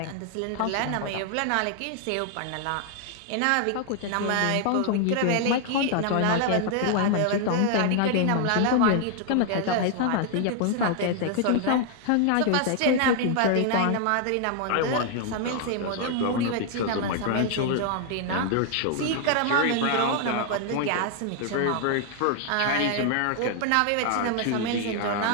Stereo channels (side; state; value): both; different; correlation 0.00